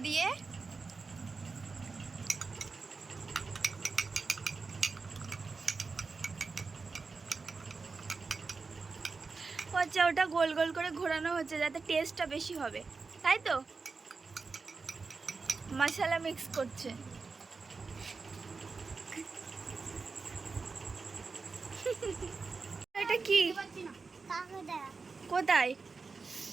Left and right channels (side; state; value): left; quieter; 4.4 dB